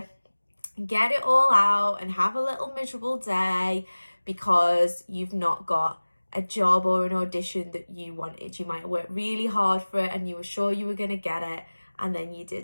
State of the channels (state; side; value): inverted; both; correlation -1.00